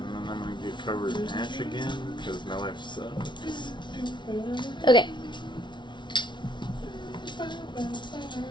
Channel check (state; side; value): late; right; 0.23 ms